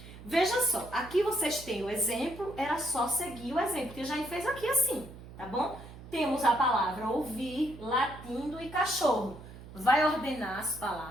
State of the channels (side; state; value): right; noise; hum, 16 dB below the sound